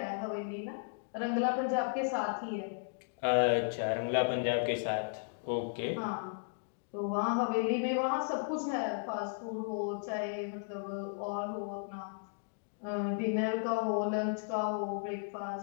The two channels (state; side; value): silent; right; digital silence